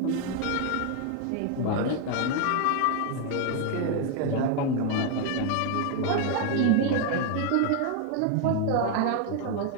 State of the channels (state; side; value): different; both; correlation 0.01